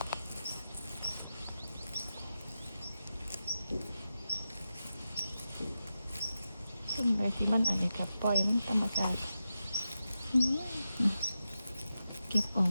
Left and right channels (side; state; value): both; inverted; correlation -0.91